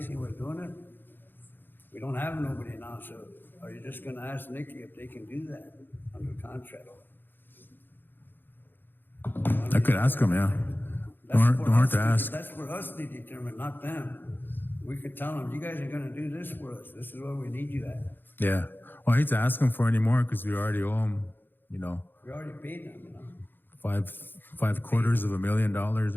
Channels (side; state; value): right; late; 0.096 ms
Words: was doing it? We don't have nobody now, so are you just gonna ask Nikki if they can do that under contract? I could ask them, yeah. Don't hurt to ask. That's for us to determine, not them. We could tell them, you guys are gonna do this for us. This is where we need you at. Yeah. Well, I hate to ask them for any more because we already owe them, We already paid them, $750,000,